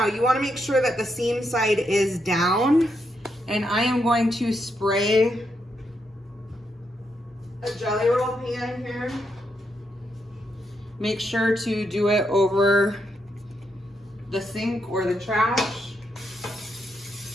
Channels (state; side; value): normal; both; correlation 0.80